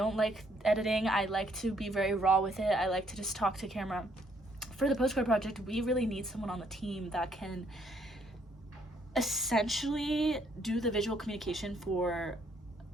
like editing. I like to be very raw with it. I like to just talk to camera. For the Postcard Project, we really need someone on the team that can essentially do the visual communication for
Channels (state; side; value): normal; both; correlation 0.68